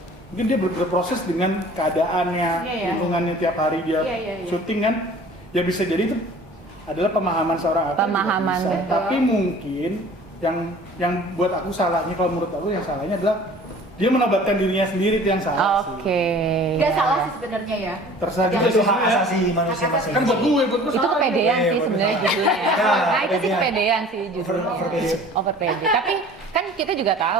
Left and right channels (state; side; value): normal; both; correlation 0.47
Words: mungkin dia berproses dengan keadaannya, Iya, iya. lingkungannya tiap hari dia Iya, iya, iya. syuting kan, ya bisa jadi itu adalah pemahaman seorang aktor. juga Pemahaman, bisa. betul. Tapi mungkin yang buat aku salahnya, kalau menurut aku yang salahnya adalah dia menobatkan dirinya sendiri, itu yang salah sih. Oke. Nggak salah sih sebenarnya ya. Terserah Itu juga sih hak sebenarnya. asasi manusia masing-masing. Kan buat gue Itu salah. kepedean Iya, sih bener. sebenarnya judulnya ya. Ya, Nah itu sih kepedean. kepedean sih judulnya. Overpede. Overpede. Tapi kan kita juga